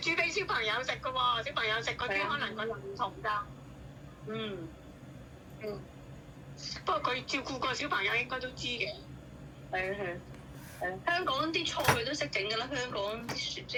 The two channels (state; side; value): identical; both; correlation 1.00